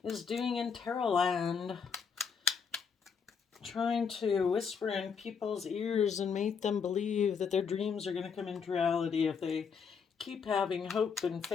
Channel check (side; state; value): right; quieter; 6.2 dB